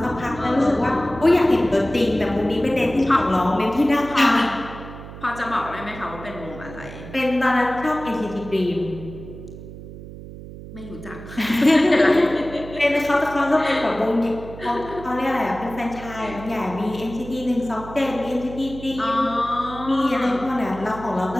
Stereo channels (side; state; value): right; noise; hum, 14 dB below the sound